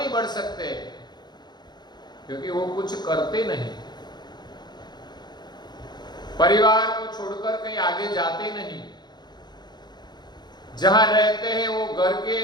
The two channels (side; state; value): right; late; 0.21 ms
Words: बढ़ सकते? क्योंकि वो कुछ करते नहीं। परिवार को छोड़कर कहीं आगे जाते नहीं, जहां रहते हैं वो घर के